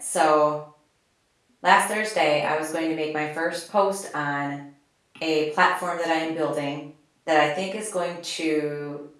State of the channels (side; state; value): both; identical; correlation 1.00